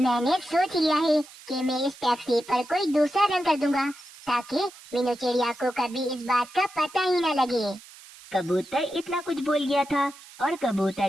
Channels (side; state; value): right; noise; hiss, 20 dB below the sound